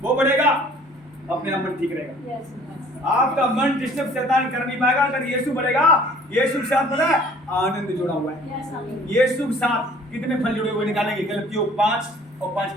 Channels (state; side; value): normal; both; correlation 0.53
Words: वो बढ़ेगा अपने आप मन ठीक रहेगा। आपका मन डिस्टर्ब शैतान कर नहीं पाएगा। अगर यीशु बढ़ेगा, यीशु के साथ पता है आनंद जुड़ा हुआ है। यीशु के साथ कितने फल जुड़े हुए निकालेंगे? गलतियों 5 और 5